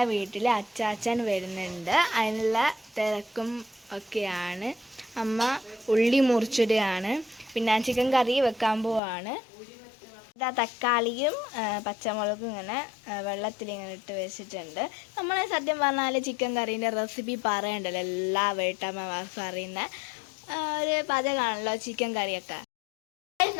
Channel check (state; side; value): drops out; right; at 9.0 s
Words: വീട്ടിൽ അച്ചാച്ചൻ വരുന്നുണ്ട്. അതിനുള്ള തിരക്കും ഒക്കെയാണ്. അമ്മ ഉള്ളി മുറിച്ചിടുകയാണ്. പിന്നെ ചിക്കൻ കറി വെക്കാൻ പോവാണ്. ഇതാ തക്കാളിയും പച്ചമുളകും ഇങ്ങനെ വെള്ളത്തിലിങ്ങനെ ഇട്ട് വെച്ചിട്ടുണ്ട്. നമ്മൾ സത്യം പറഞ്ഞാൽ ചിക്കൻ കറീൻ്റെ റെസിപ്പി പറയണ്ടല്ലോ, എല്ലാ വീട്ടമ്മമാർക്കും അറിയുന്ന ഒരു പാചകമാണല്ലോ ചിക്കൻ കറിയൊക്കെ.